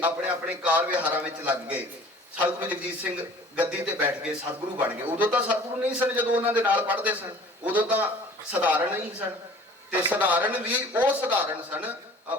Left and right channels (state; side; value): normal; both; correlation 0.48